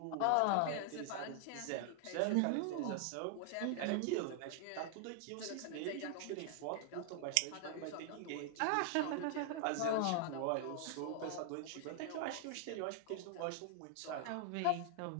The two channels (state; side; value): different; both; correlation 0.00